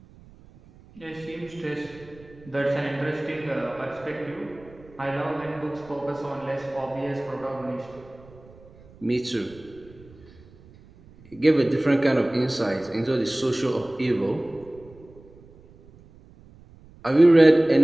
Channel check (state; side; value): noise; right; rumble, 24 dB below the sound